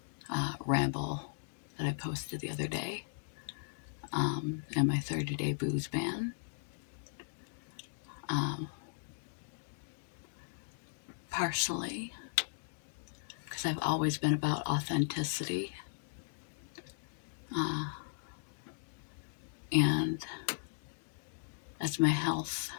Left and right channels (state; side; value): silent; right; digital silence